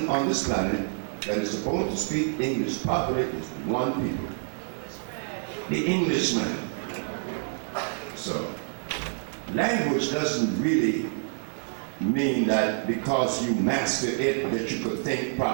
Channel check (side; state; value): left; silent; 60 dB below the other